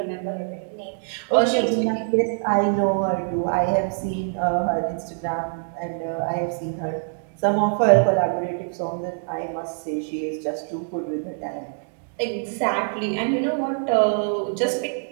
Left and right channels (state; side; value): silent; left; 62 dB below the other